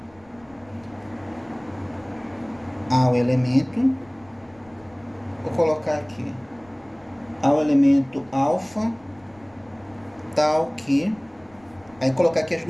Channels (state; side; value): noise; left; rumble, 29 dB below the sound